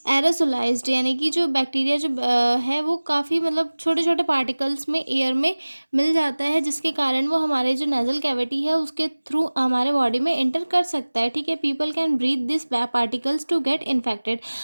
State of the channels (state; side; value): inverted; both; correlation -1.00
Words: aerosolised, यानी कि जो बैक्टीरिया जो है वो काफ़ी मतलब छोटे छोटे पार्टिकल्स में एयर में मिल जाता है, जिसके कारण वो हमारे जो नेजल कैविटी है उसके थ्रू हमारे बॉडी में एंटर कर सकता है। ठीक है, people can breathe this particles to get infected.